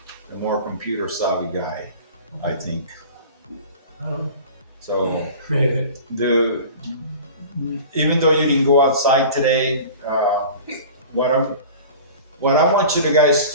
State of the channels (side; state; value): both; inverted; correlation -0.39